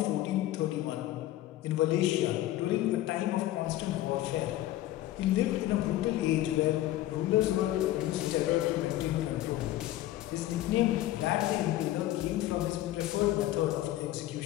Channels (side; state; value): right; quieter; 14.6 dB